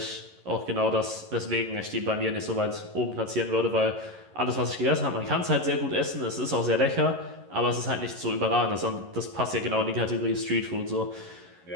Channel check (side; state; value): left; late; 11 ms